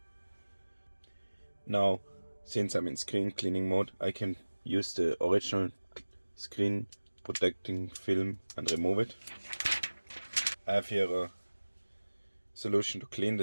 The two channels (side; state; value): both; inverted; correlation -1.00